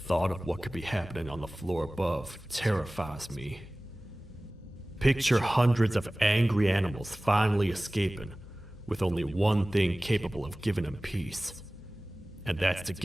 of what could be happening on the floor above terrifies me. Picture hundreds of angry animals finally escaping, with only one thing capable of giving them peace. And that's to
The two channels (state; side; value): normal; both; correlation 0.98